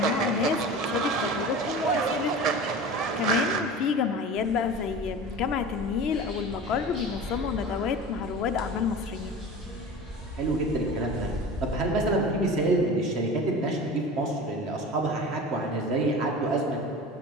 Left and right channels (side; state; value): both; normal; correlation 0.35